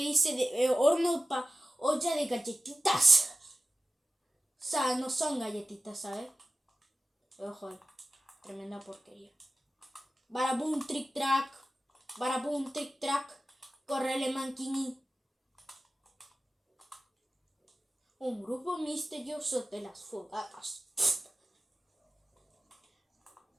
dice olla de galletitas. O sea, no son galletitas, ¿sabes? Ojo ahí. Tremenda porquería. Barabum, trick track. Barabum, trick track. Correle manquini. Un grupo misterioso de las fogatas.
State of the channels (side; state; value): both; normal; correlation 0.93